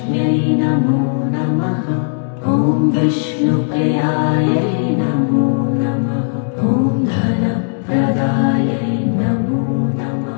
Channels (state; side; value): silent; right; digital silence